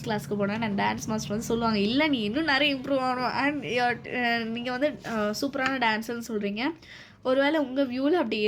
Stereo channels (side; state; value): both; identical; correlation 1.00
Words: கிளாஸ்க்கு போனேன். நான் டான்ஸ் மாஸ்டர் சொல்லுவாங்க, இல்லை நீ இன்னும் நிறைய இம்ப்ரூவ் ஆகணும். அண்ட் நீங்கள் சூப்பரான டான்ஸர்னு சொல்கிறீங்க. ஒருவேளை உங்கள் வியூவில் அப்படி